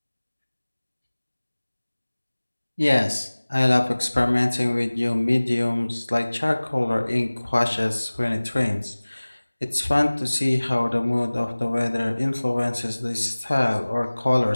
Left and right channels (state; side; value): inverted; both; correlation -1.00